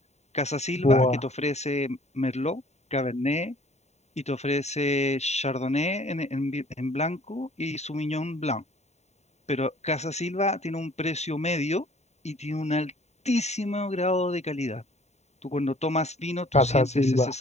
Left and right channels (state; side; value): late; right; 0.32 ms